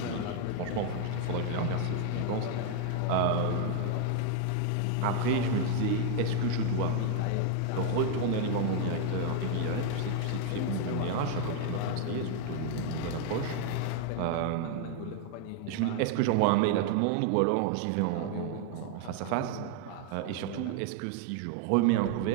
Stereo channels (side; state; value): both; different; correlation 0.00